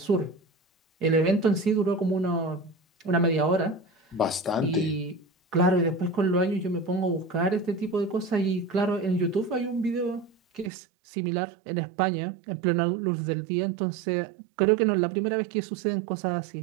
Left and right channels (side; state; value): left; drops out; at 10.7 s